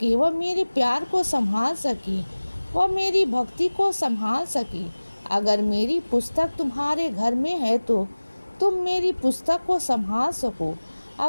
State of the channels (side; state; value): both; inverted; correlation -1.00